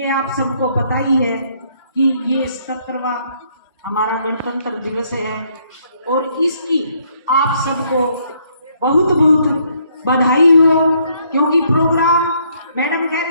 आप सबको पता ही है कि ये 77वां हमारा गणतंत्र दिवस है, और इसकी आप सबको बहुत बहुत बधाई हो। क्योंकि प्रोग्राम मैडम कह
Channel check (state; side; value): inverted; both; correlation -0.69